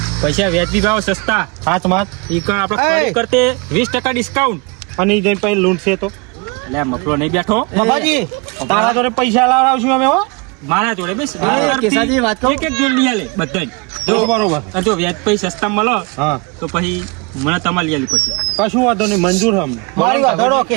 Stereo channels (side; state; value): left; quieter; 29.5 dB